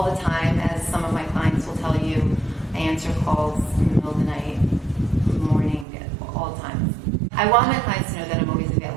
the time, as some of my clients will tell you. I answer calls in the middle of the night, morning, all the time. I want my clients to know that I'm always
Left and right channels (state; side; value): drops out; left; at 5.9 s